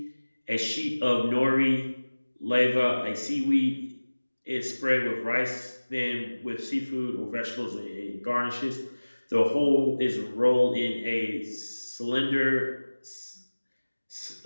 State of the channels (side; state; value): both; inverted; correlation -1.00